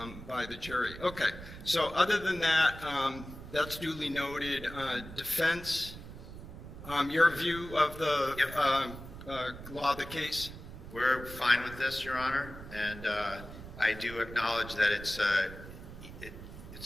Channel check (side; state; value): right; noise; rumble, 13 dB below the sound